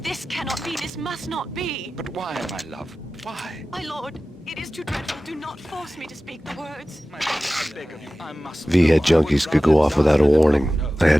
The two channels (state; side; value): normal; both; correlation 0.96